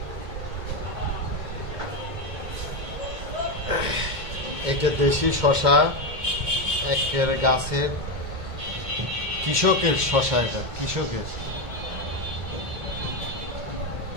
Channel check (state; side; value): late; left; 2.2 ms